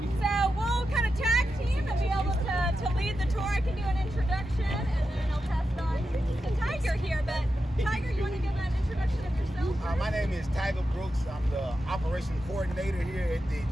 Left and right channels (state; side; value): normal; both; correlation 0.89